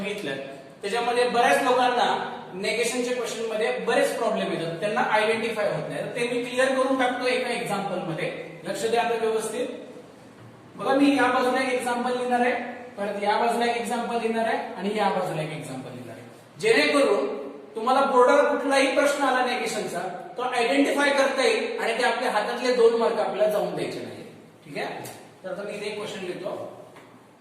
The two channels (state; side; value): identical; both; correlation 1.00